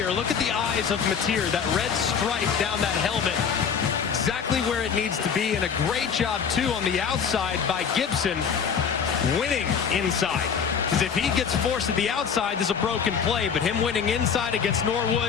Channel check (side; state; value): right; quieter; 6.8 dB